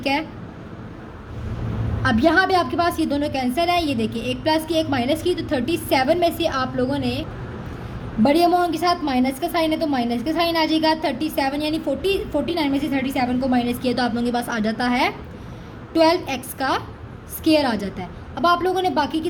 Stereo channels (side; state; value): both; identical; correlation 1.00